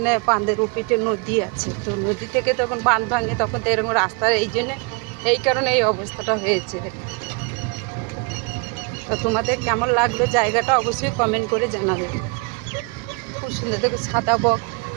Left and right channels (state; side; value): quieter; left; 31.1 dB